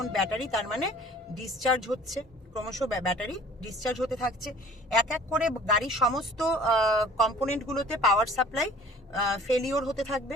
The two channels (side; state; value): both; normal; correlation 0.49